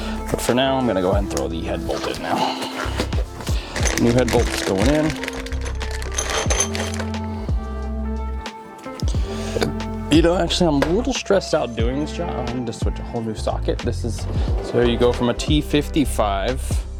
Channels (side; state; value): both; identical; correlation 1.00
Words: But for now, I'm gonna go ahead and throw the head bolt in now. New head bolt's going in. You know, actually, I'm a little stressed out doing this job. I'm gonna switch a whole new socket. So you go from a T55